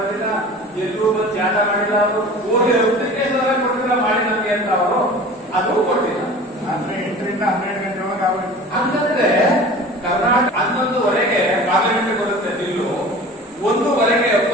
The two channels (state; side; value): normal; both; correlation 0.40